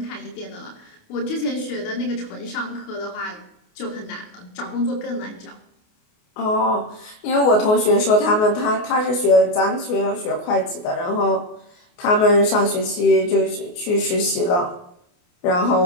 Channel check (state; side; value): late; right; 28 ms